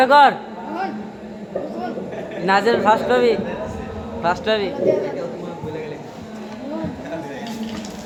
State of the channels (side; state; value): both; identical; correlation 1.00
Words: কর নাজেল ফার্স্ট হবি